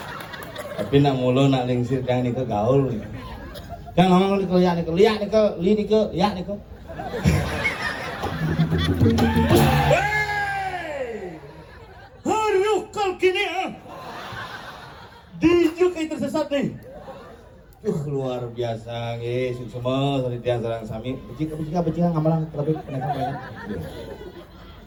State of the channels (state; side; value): identical; both; correlation 1.00